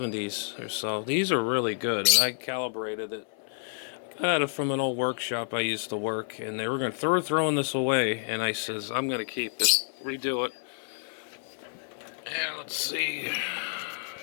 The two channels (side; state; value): right; silent; 56 dB below the other